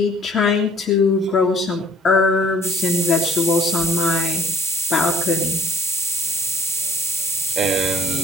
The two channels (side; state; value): both; normal; correlation 0.54